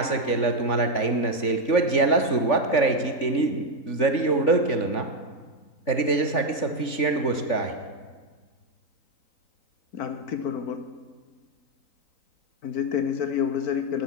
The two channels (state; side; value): late; right; 3.5 ms